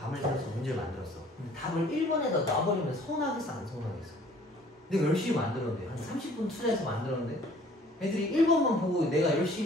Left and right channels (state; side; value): normal; both; correlation 0.54